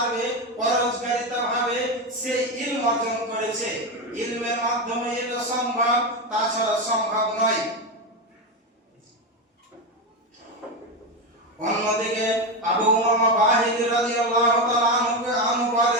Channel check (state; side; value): normal; both; correlation 0.13